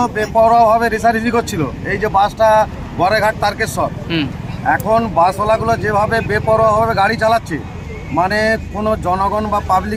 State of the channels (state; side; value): identical; both; correlation 1.00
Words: বেপরোয়াভাবে রেষারেষি করছিল। এই যে বাসটা গড়েঘাট তারকেশ্বর, এখন বাসওয়ালাগুলো যেভাবে বেপরোয়াভাবে গাড়ি চালাচ্ছে, মানে কোনো জনগণ বা